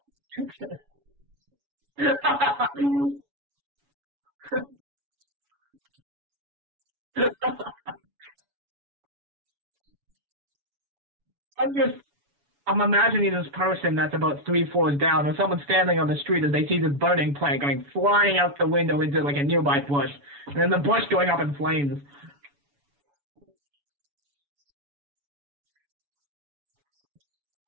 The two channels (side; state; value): left; late; 7.0 ms